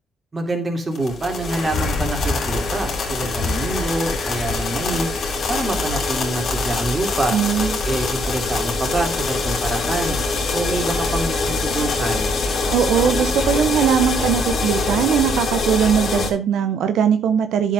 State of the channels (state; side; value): normal; both; correlation 0.69